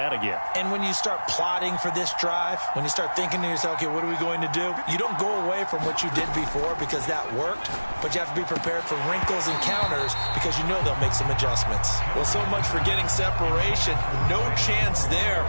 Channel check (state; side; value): inverted; both; correlation -1.00